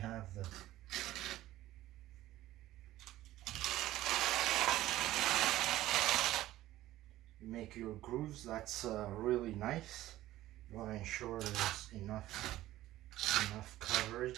you make your grooves, that's really nice. You want to ensure there's enough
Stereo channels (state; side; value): quieter; left; 15.2 dB